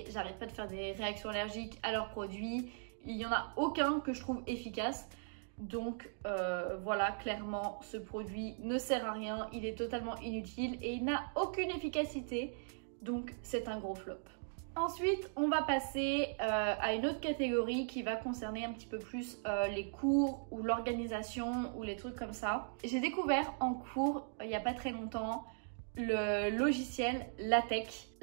J'arrête pas de faire des réactions allergiques à leurs produits. Il n'y en a aucun que je trouve efficace. Donc voilà, clairement, ce produit ne sert à rien. Il est totalement inutile et il n'a aucune efficacité. Donc c'est un gros flop. Ensuite, on va passer à une autre catégorie qui va concerner un petit peu plus les cours ou l'organisation ou les trucs comme ça. J'ai découvert en cours, il n'y a pas très longtemps, le logiciel LaTeX.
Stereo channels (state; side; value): silent; left; digital silence